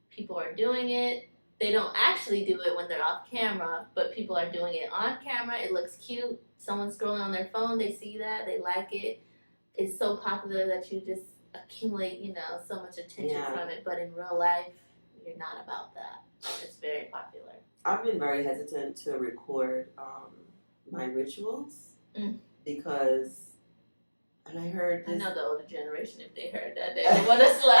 People are doing it. They don't actually do it when they're off camera, but people are doing it on camera. It looks cute. Someone's scrolling on their phone. They see that. They like it. It's so popular that you just accumulate, so much attention from it. But in real life, you're not about that. It's very popular. I've been very hesitant to record my rituals because, and I heard this. I know the older generation, if they heard that, they would want to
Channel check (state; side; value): inverted; both; correlation -1.00